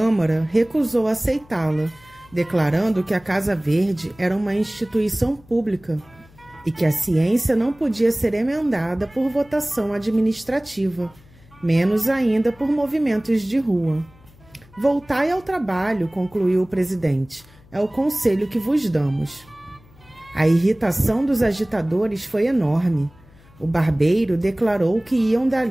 recusou aceitá-la, declarando que a Casa Verde era uma instituição pública e que a ciência não podia ser emendada por votação administrativa, menos ainda por movimentos de rua. Voltai ao trabalho, concluiu o presidente. É o conselho que vos damos. A irritação dos agitadores foi enorme. O barbeiro declarou que iam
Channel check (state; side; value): noise; left; hum, 26 dB below the sound